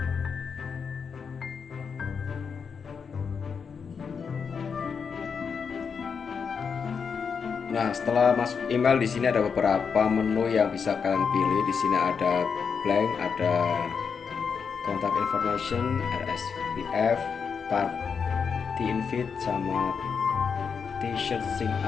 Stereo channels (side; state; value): right; quieter; 6.1 dB